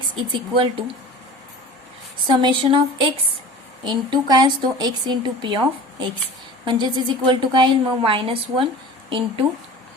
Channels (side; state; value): both; normal; correlation 0.38